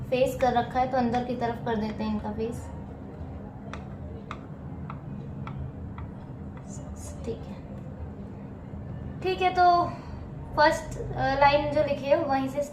फेस कर रखा है, तो अंदर की तरफ कर देते हैं इनका फेस। ठीक है, ठीक है। तो फर्स्ट लाइन जो लिखी है वहीं से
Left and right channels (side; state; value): both; identical; correlation 1.00